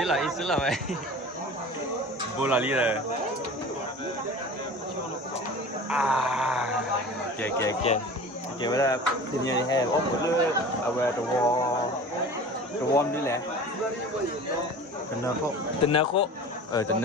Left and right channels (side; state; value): both; normal; correlation 0.39